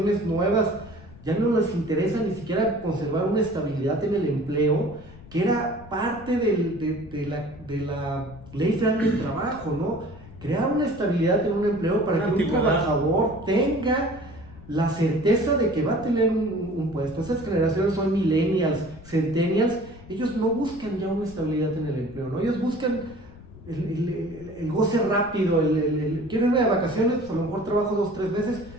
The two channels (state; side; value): noise; left; rumble, 19 dB below the sound